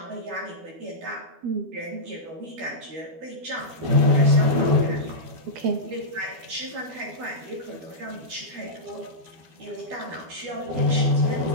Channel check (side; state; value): left; late; 12 ms